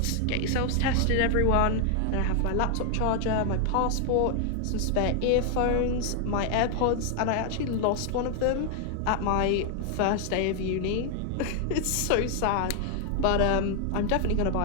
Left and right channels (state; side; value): different; both; correlation 0.00